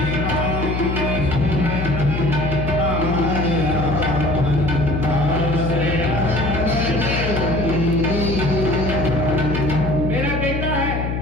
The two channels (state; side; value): noise; left; hum, 2 dB below the sound